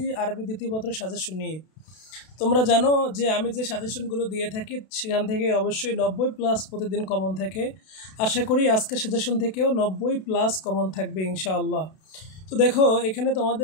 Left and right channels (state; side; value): late; right; 32 ms